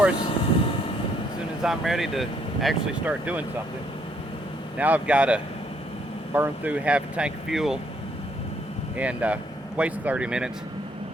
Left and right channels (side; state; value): both; normal; correlation 0.69